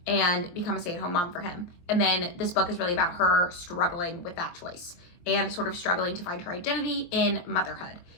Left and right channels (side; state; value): right; late; 23 ms